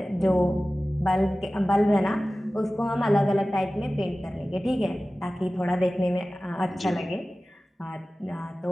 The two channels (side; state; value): both; normal; correlation 0.97